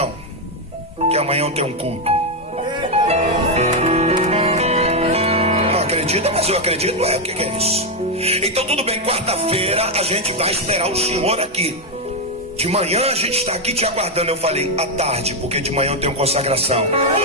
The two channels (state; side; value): normal; both; correlation 0.03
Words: porque amanhã eu tenho um culto. Não acredita, mas eu acredito. O que é isso? Então tudo bem, quarta-feira a gente vai esperar o senhor aqui. De manhã a gente está aqui te aguardando. Eu falei, à tarde, porque de manhã eu tenho consagração.